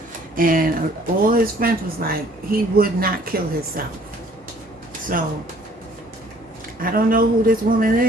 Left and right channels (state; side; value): normal; both; correlation 0.57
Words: and all his friends was like, he would not kill himself. So, I don't know who this woman